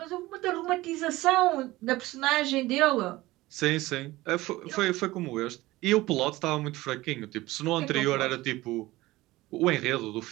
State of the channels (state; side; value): quieter; left; 18.6 dB